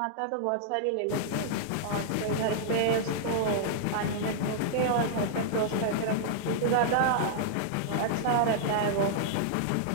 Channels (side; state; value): both; different; correlation -0.01